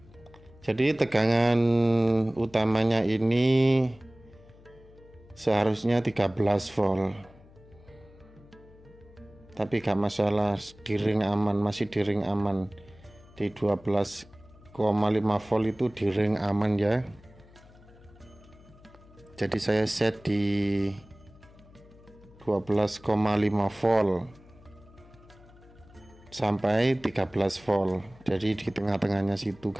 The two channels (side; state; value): left; noise; hum, 24 dB below the sound